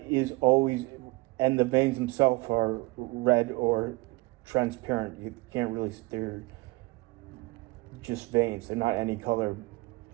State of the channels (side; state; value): left; quieter; 23.5 dB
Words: is always, and the veins themselves are red or transparent. You can't really, they're just veins. They're not any color,